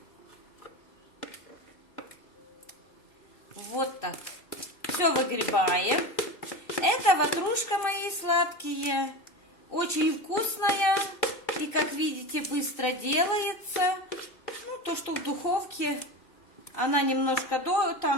Вот так. Все выгребаем. Это ватрушка, мои сладкие. Очень вкусная. И, как видите, быстро делается. Ну, то, что в духовке, она немножко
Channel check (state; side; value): late; right; 2.6 ms